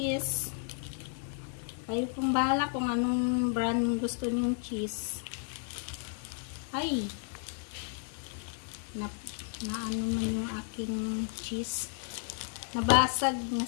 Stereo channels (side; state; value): right; silent; 56 dB below the other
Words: Kayo pong bahala kung anong brand gusto niyong cheese. Ay! Na ano man yung aking cheese. Nabasag,